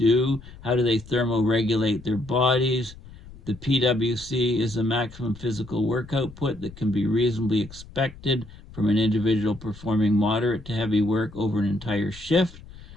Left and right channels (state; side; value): noise; left; rumble, 18 dB below the sound